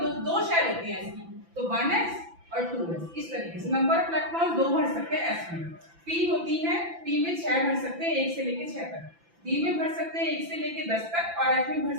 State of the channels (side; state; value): left; late; 5.9 ms